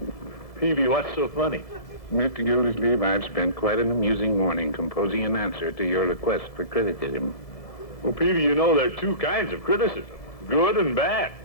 Peavy, what's so funny? Mr. Gildersleeve, I've spent quite an amusing morning composing an answer to your request for criticism. Well, Peavy, you know there are 2 kinds of criticism, good and bad.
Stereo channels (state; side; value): late; right; 2.0 ms